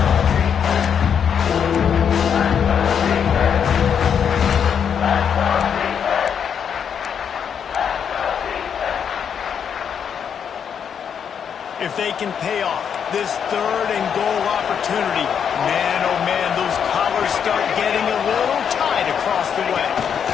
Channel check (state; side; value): quieter; right; 7.7 dB